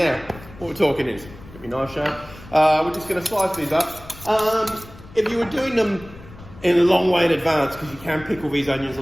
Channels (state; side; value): noise; left; rumble, 19 dB below the sound